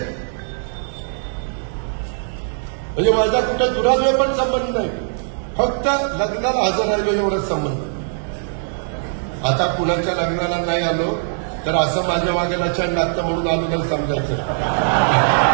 म्हणजे माझा कुठं दुराद्वय पण संबंध नाही, फक्त लग्नाला हजर राहिलो एवढाच संबंध. आता कुणाच्या लग्नाला नाही आलो तर असं माझ्या मागेला छान लागतं म्हणून आलो तर समजायचं,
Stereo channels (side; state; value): left; silent; 65 dB below the other